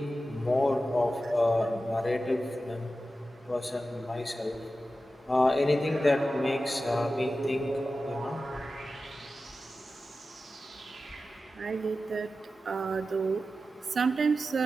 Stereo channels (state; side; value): normal; both; correlation 0.93